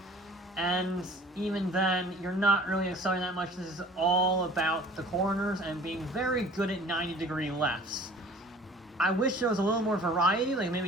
and even then, you're not really accelerating that much. This is all about the corners and being very good at 90-degree lefts. I wish there was a little more variety, like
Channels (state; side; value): normal; both; correlation 0.48